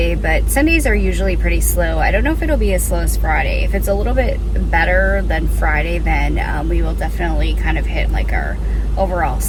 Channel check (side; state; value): both; identical; correlation 1.00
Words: But Sundays are usually pretty slow. I don't know if it'll be as slow as Friday. If it's a little bit better than Friday, then we will definitely kind of hit like our overall